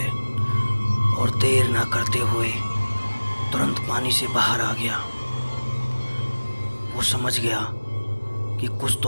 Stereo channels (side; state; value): both; inverted; correlation -1.00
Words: और देर ना करते हुए तुरंत पानी से बाहर आ गया। वो समझ गया कि कुछ